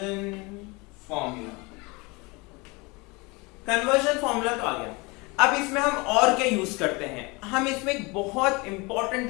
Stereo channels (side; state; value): right; quieter; 26.2 dB